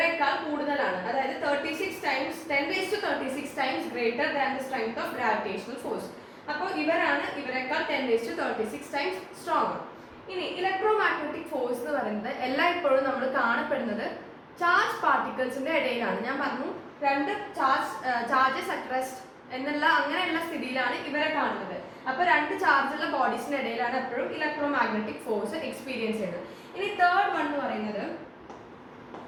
കൂടുതലാണ്. അതായത് 10⁻36 times greater than the strength of gravitational force. അപ്പോൾ ഇവരെക്കാൾ 10⁻36 ടൈംസ് സ്ട്രോങ്. ഇനി ഇലക്ട്രോ മാഗ്നറ്റിക് ഫോഴ്സ് എന്ന് പറയുന്നത് എല്ലായ്പ്പോഴും നമ്മൾ കാണപ്പെടുന്നത് ചാർജ് പാർട്ടിക്കിൾസിന്റെ ഇടയിലാണ്. ഞാൻ പറഞ്ഞു രണ്ട് ചാർജസ് അറ്റ് റെസ്റ്റ് എന്നുള്ള അങ്ങനെയുള്ള സ്ഥിതിയിലാണ് ഇവരെ കാണുന്നത്. അപ്പൊ രണ്ട് ചാർജുള്ള ബോഡീസിന്റെ ഇടയിലാണ് എപ്പോഴും ഇലക്ട്രോ മാഗ്നറ്റിക് ഫോഴ്സ് എക്സ്പീരിയൻസ് ചെയ്യുന്നത്. ഇനി തേർഡ് വൺ എന്ന് പറയുന്നത്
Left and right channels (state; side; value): identical; both; correlation 1.00